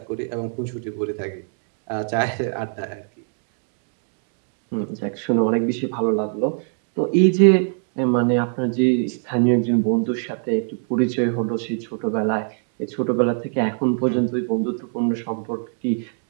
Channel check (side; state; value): left; silent; 56 dB below the other